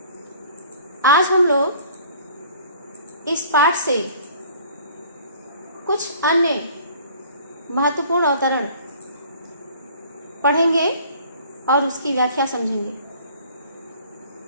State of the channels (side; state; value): both; inverted; correlation -0.51